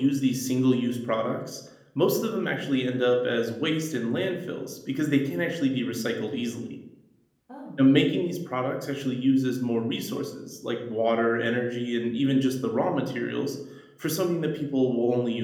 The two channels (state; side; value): identical; both; correlation 1.00